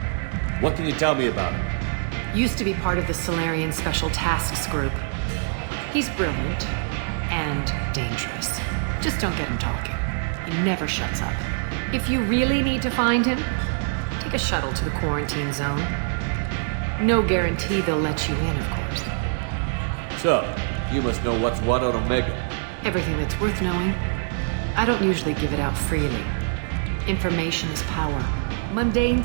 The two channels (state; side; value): silent; left; 62 dB below the other